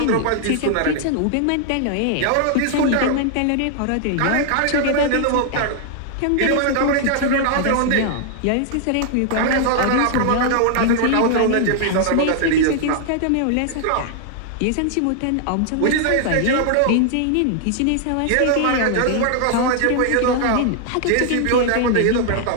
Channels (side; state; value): both; different; correlation 0.00